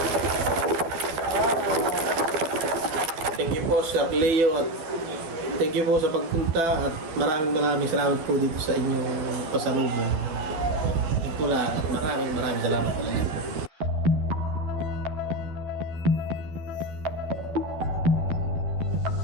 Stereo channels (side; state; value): left; late; 12 ms